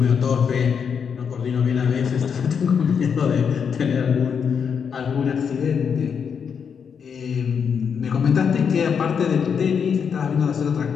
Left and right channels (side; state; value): right; quieter; 6.8 dB